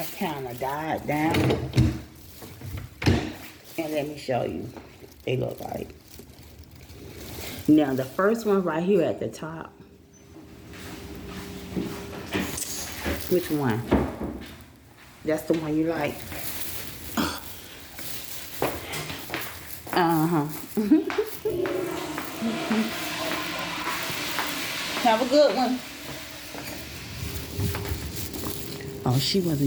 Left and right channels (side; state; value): both; identical; correlation 1.00